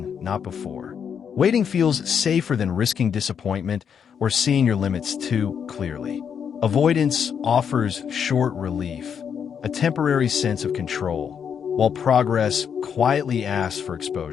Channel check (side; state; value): right; quieter; 7.5 dB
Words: not before. Waiting feels safer than risking disappointment or seeing your limits too clearly. Avoidance offers short relief, a temporary sense of control, while progress quietly asks for